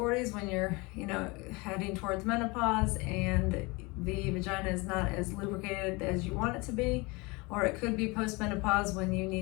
when you're, heading towards menopause and the vagina is not as lubricated as you want it to be. Or it could be post-menopause when you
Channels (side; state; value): right; quieter; 25.8 dB